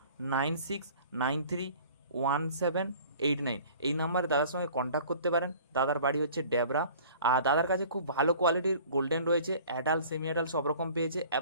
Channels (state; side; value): inverted; both; correlation -0.48